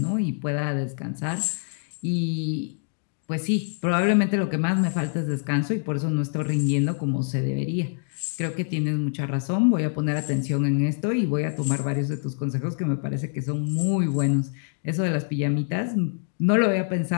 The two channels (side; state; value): right; silent; digital silence